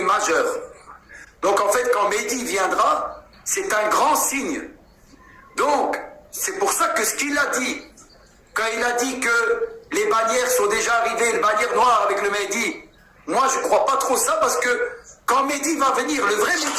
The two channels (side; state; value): both; identical; correlation 1.00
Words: majeur. Donc en fait, quand Mehdi viendra, c'est un grand signe. Donc, c'est pour ça que ce qu'il a dit, quand il a dit que les bannières sont déjà arrivées, les bannières noires avec le Mehdi, moi je ne crois pas trop ça parce que quand Mehdi va venir, le vrai